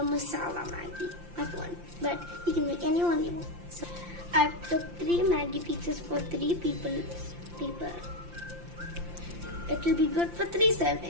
Maggi. But you can make any one you want. So I've took 3 Maggi pieces for 3 people. It will be good for 3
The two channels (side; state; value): left; late; 5.8 ms